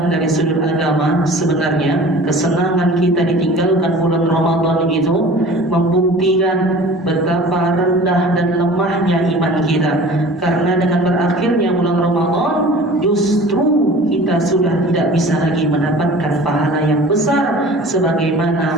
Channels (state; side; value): normal; both; correlation 0.43